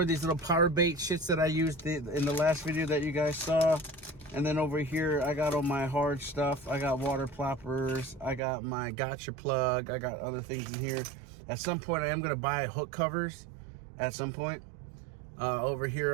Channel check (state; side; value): drops out; left; at 8.4 s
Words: of these little power bait shits that I used in the last video that you guys saw. And then over here, I got all my hard stuff. I got water ploppers. I got my gotcha plug. I got other things in here. At some point, I am gonna buy hook covers at some point. Over